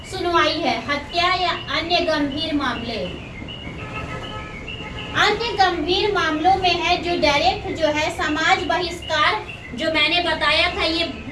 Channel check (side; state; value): both; identical; correlation 1.00